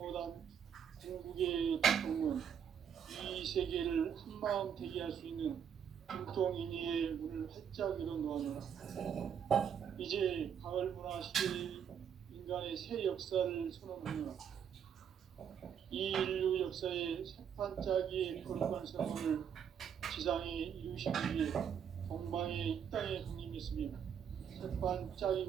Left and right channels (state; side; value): quieter; left; 8.1 dB